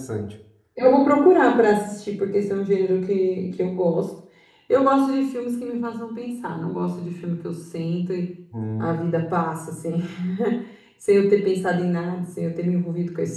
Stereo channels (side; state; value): both; identical; correlation 1.00